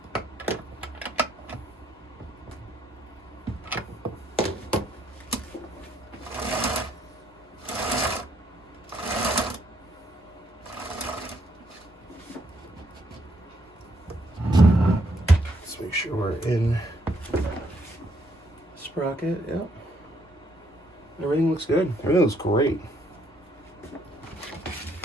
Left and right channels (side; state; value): both; normal; correlation 0.71